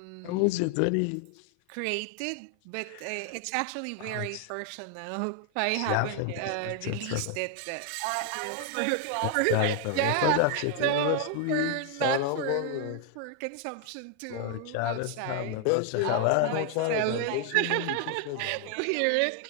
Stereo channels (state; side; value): different; both; correlation 0.00